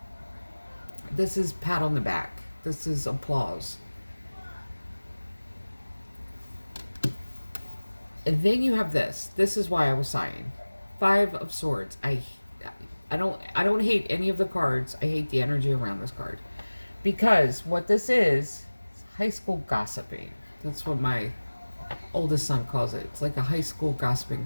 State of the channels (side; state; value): both; inverted; correlation -1.00